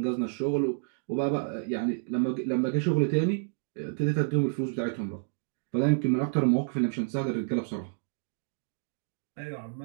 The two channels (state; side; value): silent; left; digital silence